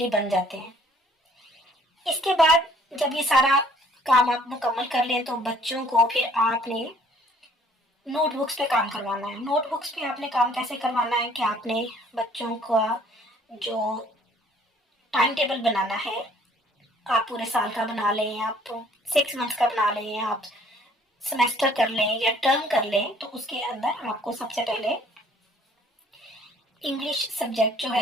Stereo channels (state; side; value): normal; both; correlation 0.58